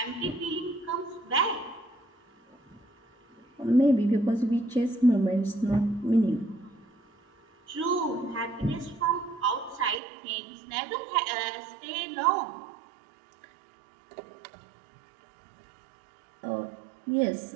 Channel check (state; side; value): drops out; left; at 10.0 s